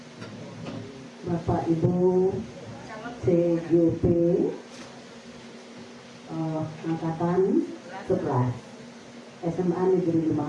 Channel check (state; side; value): identical; both; correlation 1.00